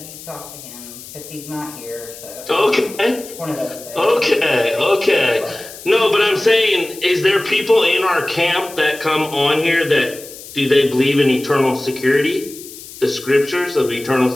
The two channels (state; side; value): noise; left; hiss, 15 dB below the sound